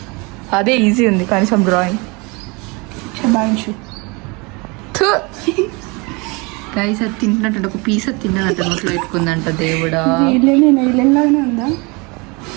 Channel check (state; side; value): quieter; left; 27.9 dB